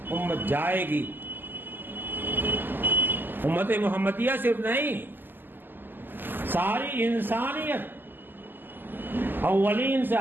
امت جائے گی. امت محمدیہ صرف نہیں، ساری انسانیت اولین سے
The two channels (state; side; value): late; left; 0.092 ms